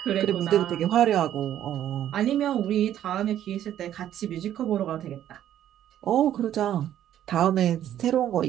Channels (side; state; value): left; quieter; 11.3 dB